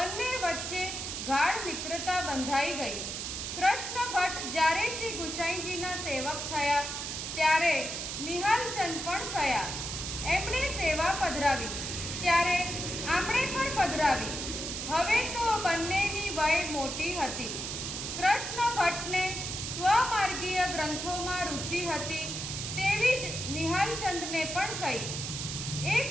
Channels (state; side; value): noise; right; hiss, 5 dB below the sound